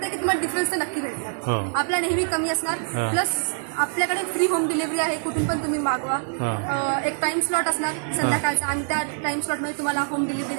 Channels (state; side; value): silent; left; digital silence